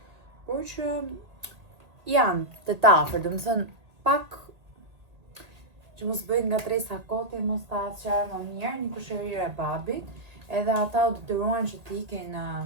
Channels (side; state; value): left; late; 1.8 ms